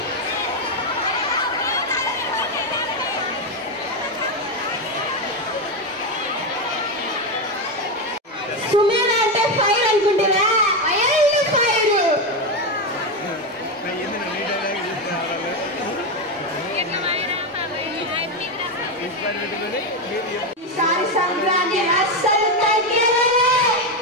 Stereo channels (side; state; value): both; normal; correlation 0.10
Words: సుమేధ అంటే ఫైర్ అనుకుంటున్నా, అయ్యో ఫైర్. ఈసారి సంక్రాంతి అస్సలు తగ్గేదేలే.